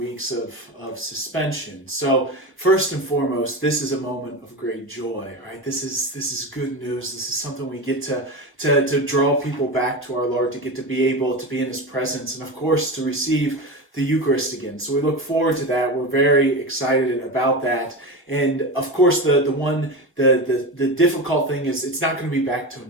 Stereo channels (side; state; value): both; normal; correlation 0.23